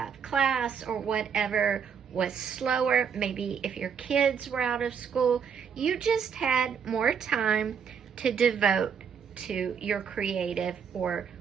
class or whatever, was slower. Maybe if your kids were out of school, you just had more time to devote to your creative or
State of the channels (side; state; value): left; quieter; 7.0 dB